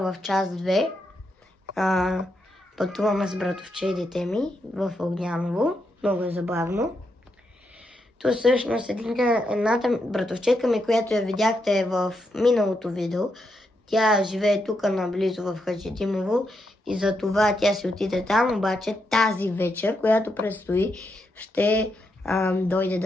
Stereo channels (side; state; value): both; normal; correlation 0.82